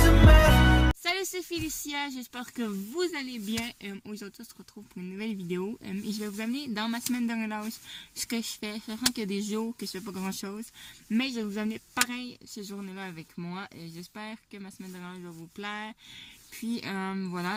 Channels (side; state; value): both; identical; correlation 1.00